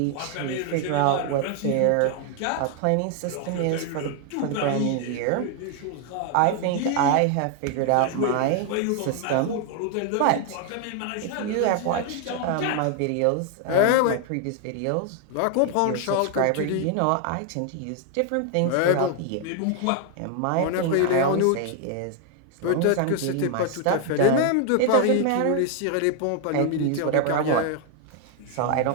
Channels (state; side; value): different; both; correlation 0.00